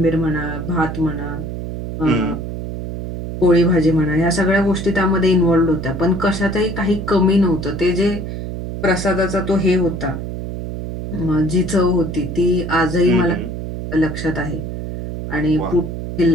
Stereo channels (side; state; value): right; noise; hum, 6 dB below the sound